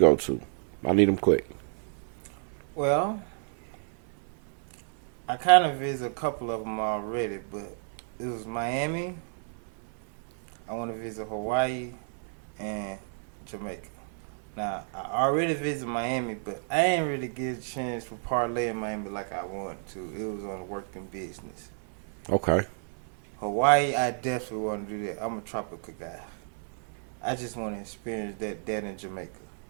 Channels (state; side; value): silent; left; digital silence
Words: to? I need them quick. Well, I kind of visited a couple of them already, but it was Miami. I want to visit Hawaii and Jamaica. Now, I already visited Miami, but I ain't really get a chance to parlay in Miami like I wanted to. It was on working business. Okay. Hawaii, I definitely want to do that. I'm a tropical guy. I just want to experience that in Jamaica.